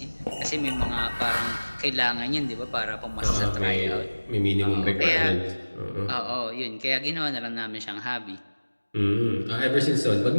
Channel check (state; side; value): inverted; both; correlation -1.00